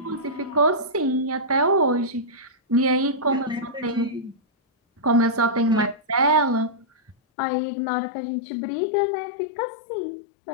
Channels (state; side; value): drops out; right; at 7.2 s